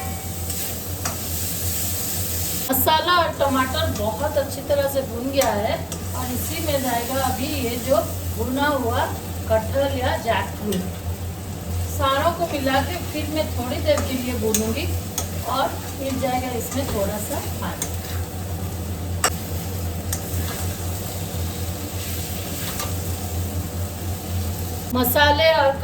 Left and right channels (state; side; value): identical; both; correlation 1.00